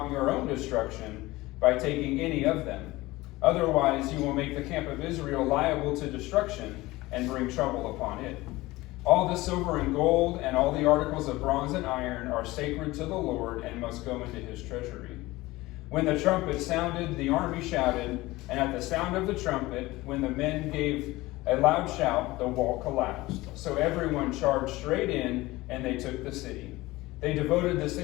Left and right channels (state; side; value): quieter; right; 19.5 dB